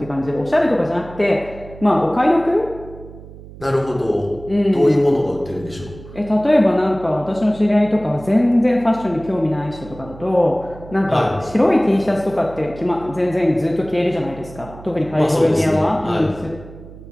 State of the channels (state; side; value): noise; right; hum, 17 dB below the sound